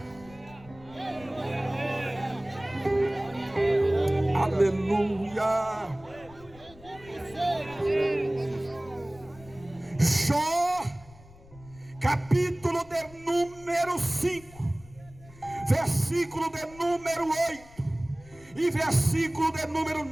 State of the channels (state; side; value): noise; left; rumble, 22 dB below the sound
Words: Aleluia. Jó, capítulo de número 5, versículo de número 8 e versículo de número